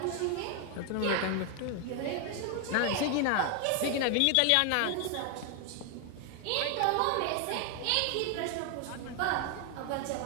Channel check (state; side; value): different; both; correlation 0.00